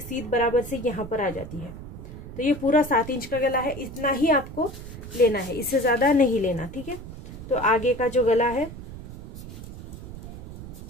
बराबर से यहाँ पर आ जाती है। तो ये पूरा 7 इंच का गला है, इतना ही आपको लेना है, इससे ज्यादा नहीं लेना, ठीक है। तो आगे का जो गला है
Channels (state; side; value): noise; right; rumble, 12 dB below the sound